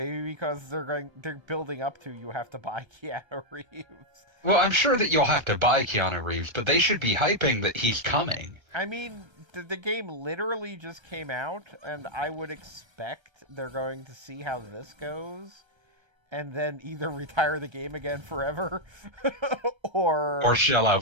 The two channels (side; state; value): left; late; 1.3 ms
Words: because they're building up to you have to buy Keanu Reeves. Well, I'm sure that you'll have to buy Keanu Reeves, but they should be hyping that he's coming. I mean, the game literally just came out, and I would expect they're going to see how this goes, and then either retire the game again forever, or shell